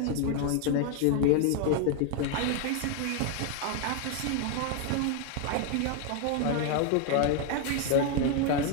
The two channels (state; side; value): different; both; correlation 0.01